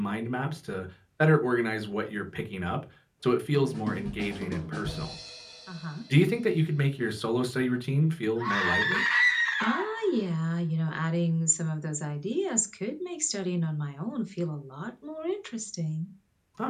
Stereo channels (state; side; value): identical; both; correlation 1.00